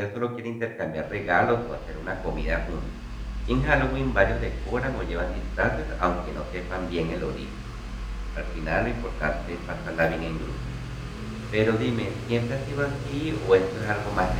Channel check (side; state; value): both; identical; correlation 1.00